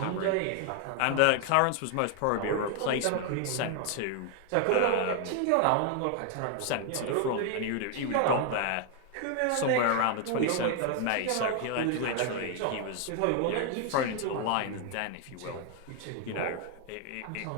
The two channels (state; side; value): different; both; correlation 0.00